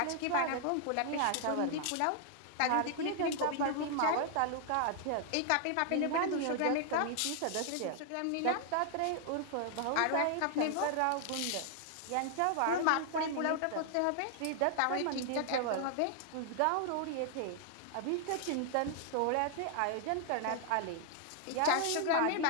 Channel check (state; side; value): different; both; correlation 0.00